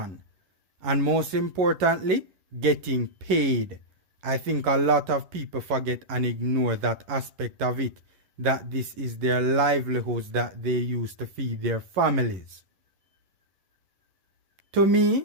And most importantly, getting paid. I think a lot of people forget and ignore that aspect of it, that this is their livelihoods that they use to feed their families. To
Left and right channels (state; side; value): late; left; 11 ms